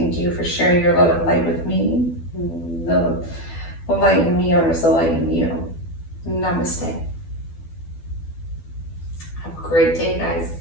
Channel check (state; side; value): late; right; 12 ms